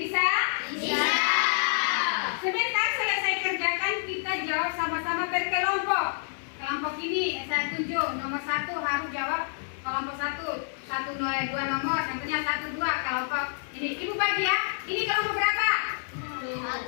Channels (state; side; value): silent; right; 59 dB below the other